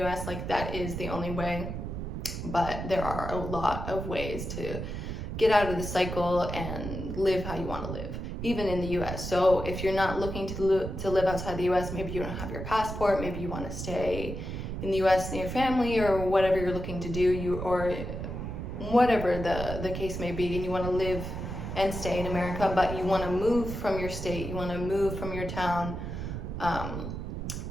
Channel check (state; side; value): noise; right; rumble, 5 dB below the sound